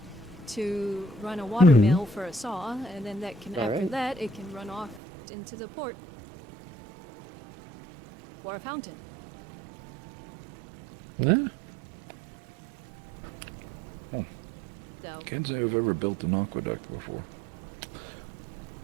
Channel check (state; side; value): drops out; left; at 5.0 s